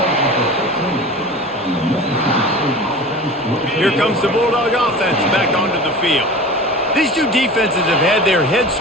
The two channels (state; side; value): normal; both; correlation 0.36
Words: Here comes the Bulldog offense back onto the field. These two defenses have had their heads